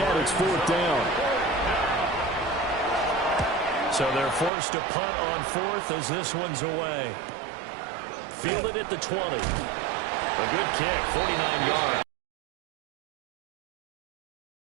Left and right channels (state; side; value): drops out; left; at 4.5 s